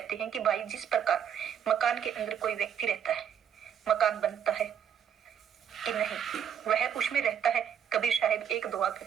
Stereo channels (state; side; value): quieter; left; 8.7 dB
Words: हैं कि भाई, जिस प्रकार मकान के अंदर कोई व्यक्ति रहता है, मकान बनता है कि नहीं, वह उसमें रहता है। कबीर साहिब एक दुआ